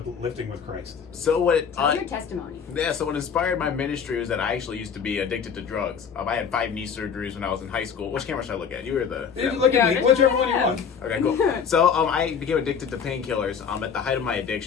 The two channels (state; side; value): quieter; right; 6.8 dB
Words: lifting with Christ? So what? Tell your testimony. Yeah, so what inspired my ministry was that I actually used to be addicted to drugs. I had 5 knee surgeries when I was in high school. Which camera should I look at? You were the... Look at me, Yeah, whichever one you want. Okay, cool. So I became addicted to painkillers. At the height of my